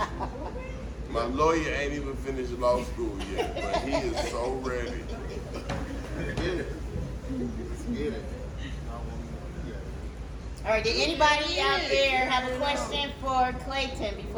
My lawyer ain't even finished law school yet, but he is so ready. Get it. Get it. All right, did anybody out there have a question for Clayton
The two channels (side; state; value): both; identical; correlation 1.00